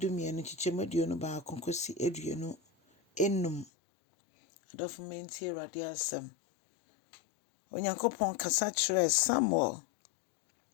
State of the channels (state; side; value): drops out; right; at 3.7 s